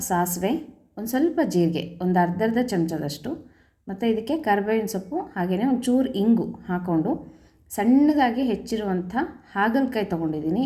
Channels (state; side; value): identical; both; correlation 1.00